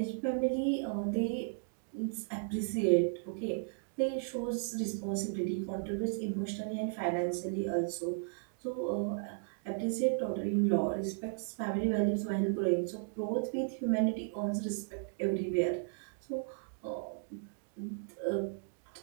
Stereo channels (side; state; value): left; silent; digital silence